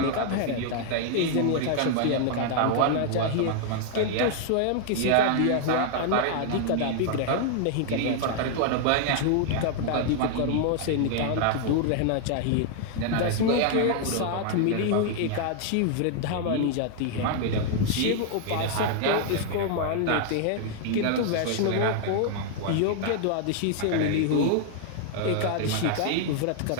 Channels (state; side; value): different; both; correlation 0.00